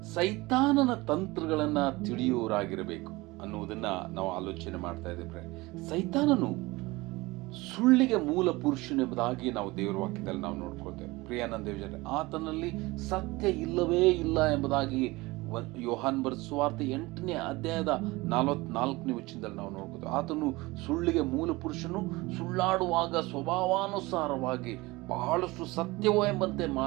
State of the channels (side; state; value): left; quieter; 21.7 dB